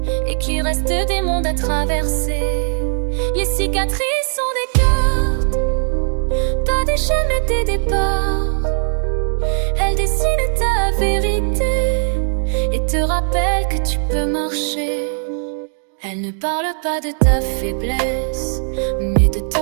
et qu'il reste des mondes à traverser. Les cicatrices sont des cartes, pas des chaînes mais des départs. Elles dessinent ta vérité et te rappellent que tu peux marcher. Elles ne parlent pas de ta faiblesse, mais de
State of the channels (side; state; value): left; silent; digital silence